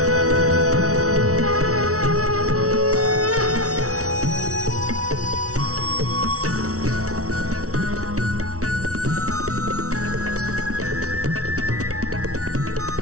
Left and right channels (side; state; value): left; late; 0.65 ms